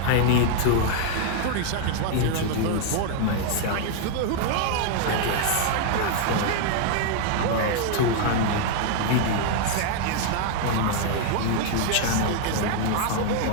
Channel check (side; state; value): both; different; correlation 0.00